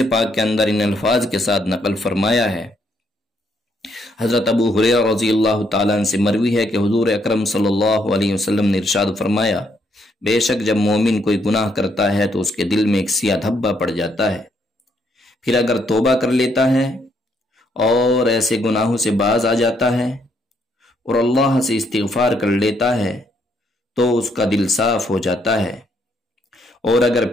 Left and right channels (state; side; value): normal; both; correlation 0.73